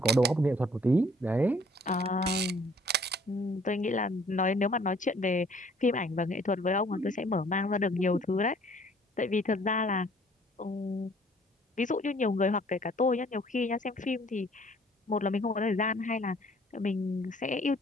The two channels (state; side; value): normal; both; correlation 0.58